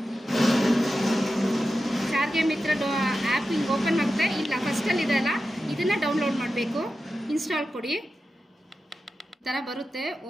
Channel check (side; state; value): both; normal; correlation 0.92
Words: ಸಾರಿಗೆ ಮಿತ್ರ ಆ್ಯಪ್ ಹಿಂಗೆ ಓಪನ್ ಆಗುತ್ತೆ. ಇಲ್ಲ ಫಸ್ಟಲ್ಲಿ ಇದೆಯಲ್ಲ, ಇದನ್ನು ಡೌನ್ಲೋಡ್ ಮಾಡಬೇಕು. ಇನ್ಸ್ಟಾಲ್ ಕೊಡಿ, ಈ ಥರ ಬರುತ್ತೆ.